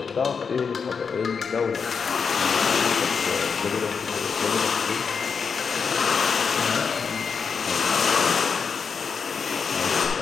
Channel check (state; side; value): quieter; right; 5.9 dB